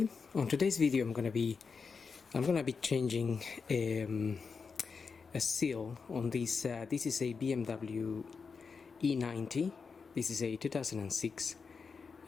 today's video I'm gonna be changing a seal on this. This is a BMW e90. This is a 2006,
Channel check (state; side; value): quieter; right; 5.2 dB